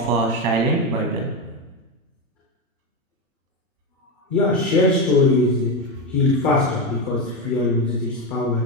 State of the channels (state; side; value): normal; both; correlation 0.12